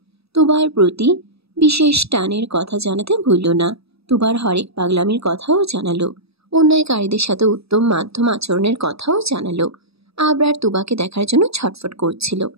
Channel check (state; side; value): late; left; 0.78 ms